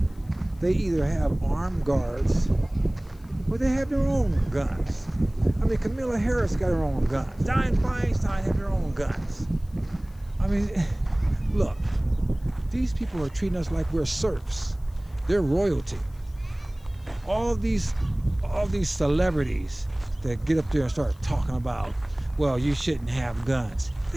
they either have armed guards or they have their own guns. I mean, Kamala Harris got her own guns. Dianne Feinstein have their own guns. I mean, look, these people are treating us like we're serfs. They're royalty. All these celebrities that get up there and start talking about, well, you shouldn't have guns.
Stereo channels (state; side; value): noise; left; hiss, 30 dB below the sound